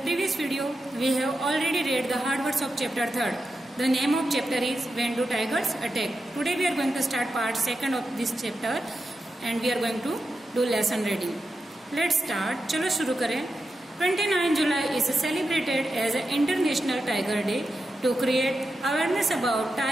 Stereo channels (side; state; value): both; normal; correlation 0.89